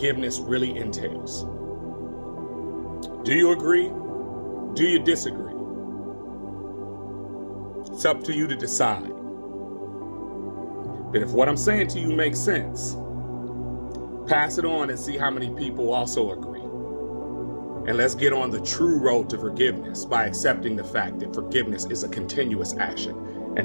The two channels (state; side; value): inverted; both; correlation -1.00